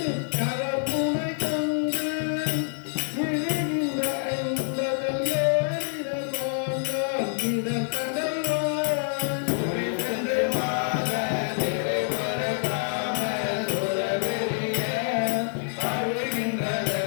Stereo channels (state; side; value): silent; right; digital silence